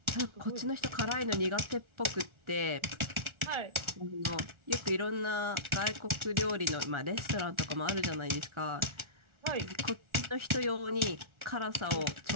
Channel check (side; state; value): left; late; 1.4 ms